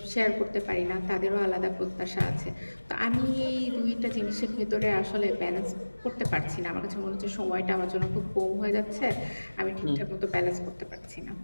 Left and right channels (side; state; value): both; inverted; correlation -1.00